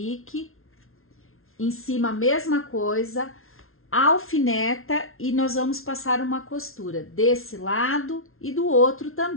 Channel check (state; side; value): late; right; 0.62 ms